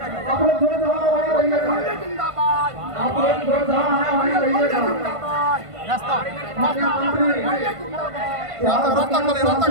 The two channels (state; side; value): late; left; 1.5 ms